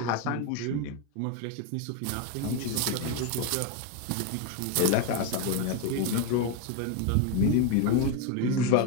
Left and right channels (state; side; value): different; both; correlation 0.02